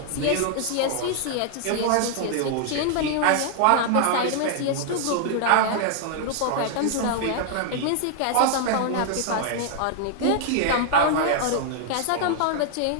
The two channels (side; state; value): both; different; correlation 0.00